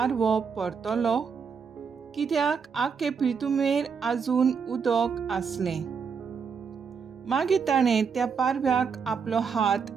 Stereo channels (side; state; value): left; quieter; 6.0 dB